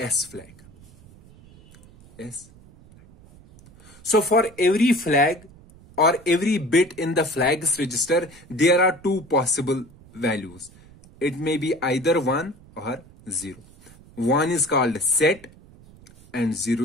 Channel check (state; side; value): noise; right; rumble, 24 dB below the sound